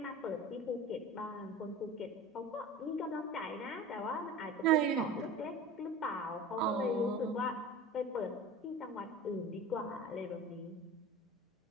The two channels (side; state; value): both; normal; correlation 0.36